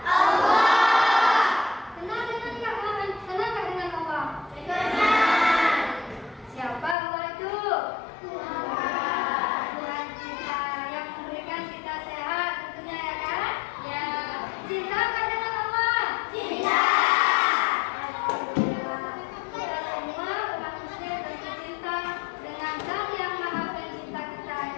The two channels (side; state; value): right; drops out; at 7.0 s